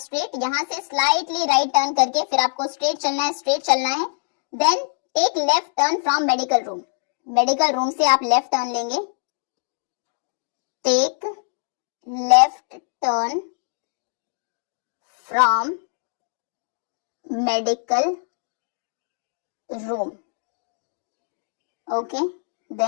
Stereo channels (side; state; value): right; silent; digital silence